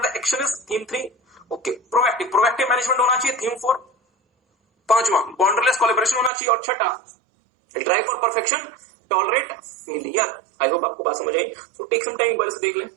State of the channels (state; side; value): drops out; left; at 6.3 s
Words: the action is. Theme 3 okay, proactive management होना चाहिए। थीम 4। पांचवा बाउंड्रीलेस कोलैबोरेशन होना चाहिए। और छठा drive for perfection tolerate failure. I hope आपको बात समझ आई। सो टेक सम टाइम, एक बार से देख लें।